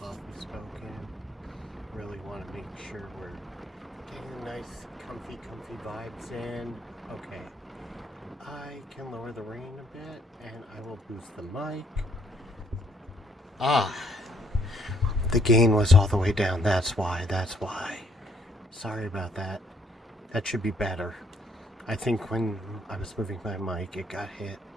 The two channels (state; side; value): normal; both; correlation 0.67